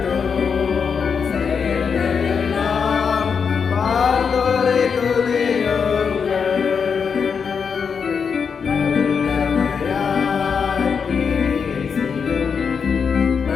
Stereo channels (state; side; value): quieter; right; 6.2 dB